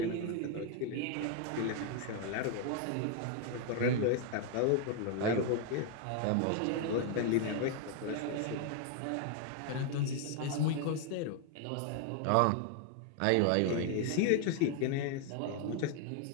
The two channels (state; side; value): different; both; correlation 0.01